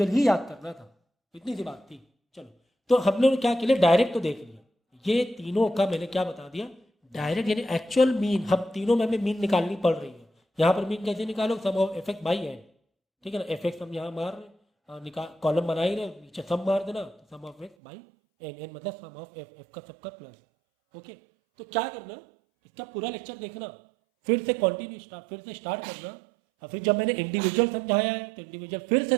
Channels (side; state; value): left; drops out; at 17.8 s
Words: ही याद करना था, इतनी सी बात थी। चलो तो हम लोग क्या के लिए डायरेक्ट तो देख लिया, ये तीनों का मैंने क्या बता दिया, डायरेक्ट यानी एक्चुअल मीन, हम तीनों में हमें मीन निकालनी पड़ रही है। यहाँ पर मीन कैसे निकालो, sum of F X by N, ठीक है ना, एफ एक्स हम यहाँ मार रहे निकाल कॉलम बना ही रहे, नीचे सम मार देना तो sum of x by n, n मतलब सम ऑफ एफ, एफ का सबका प्लस, ओके। तो क्या करना, इसका पूरा लेक्चर देखना, फिर से कंटिन्यू स्टार्ट, फिर से स्टार्ट करना, और फिर जब मैंने इंडिविजुअल समझाया है तो इंडिविजुअल फिर से